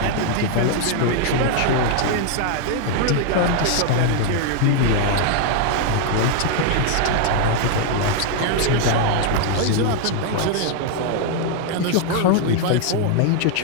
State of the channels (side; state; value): both; different; correlation 0.00